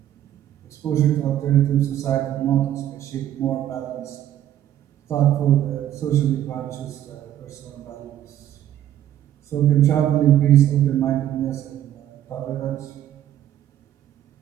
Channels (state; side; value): quieter; left; 11.7 dB